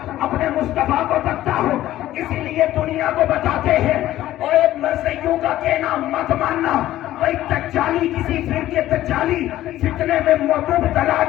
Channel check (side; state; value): right; quieter; 14.2 dB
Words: اپنے مصطفیٰ کو تکتا ہوں، اسی لیے دنیا کو بتاتے ہیں اور ایک مرثیوں کا کہنا مت ماننا، کوئی تجالی کسی فرقے تجالی فتنے میں مبتلا